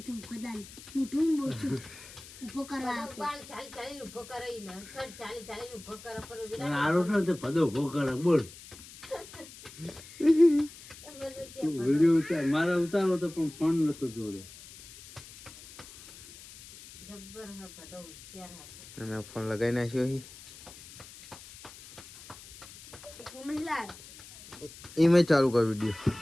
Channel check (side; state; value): left; noise; hiss, 18 dB below the sound